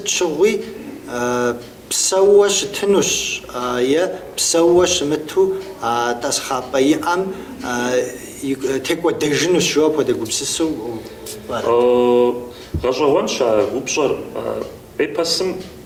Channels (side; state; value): both; identical; correlation 1.00